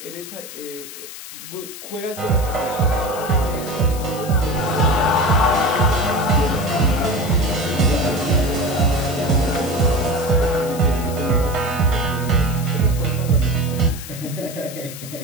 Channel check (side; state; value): left; noise; hiss, 13 dB below the sound